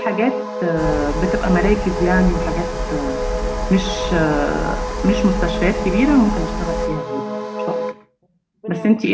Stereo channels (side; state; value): both; identical; correlation 1.00